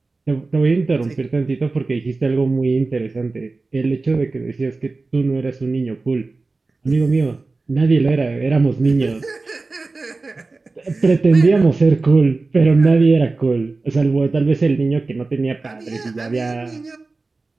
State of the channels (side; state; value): left; quieter; 3.6 dB